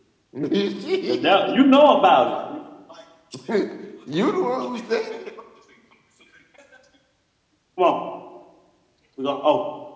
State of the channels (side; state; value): both; identical; correlation 1.00